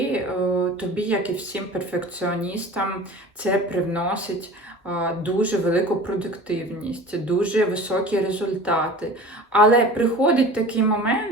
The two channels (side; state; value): both; normal; correlation 0.39